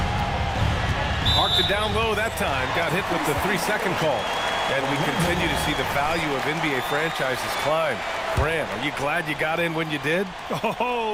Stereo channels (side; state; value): both; identical; correlation 1.00